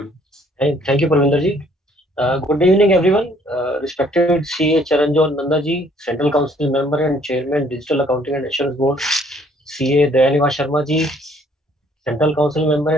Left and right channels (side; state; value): both; normal; correlation 0.62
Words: Thank you, Parvinder ji. Good evening, everyone. Respected CA Charanjot Nanda ji, Central Council Member and Chairman, Digital Accounting and Assurance Board, CA Dayaniva Sharma ji, Central Council Member